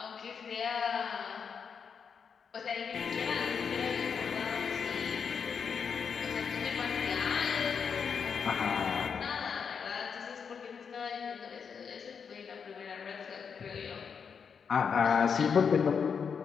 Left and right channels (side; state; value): right; quieter; 6.4 dB